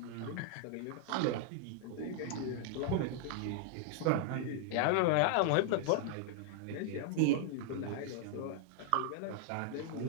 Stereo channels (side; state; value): both; different; correlation 0.00